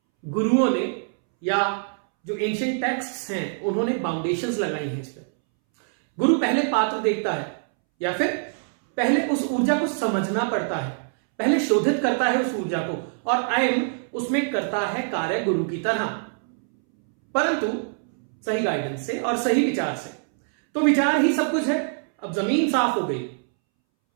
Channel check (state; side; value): silent; left; 62 dB below the other